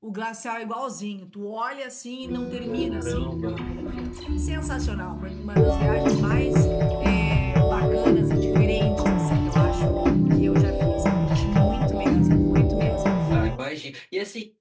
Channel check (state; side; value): identical; both; correlation 1.00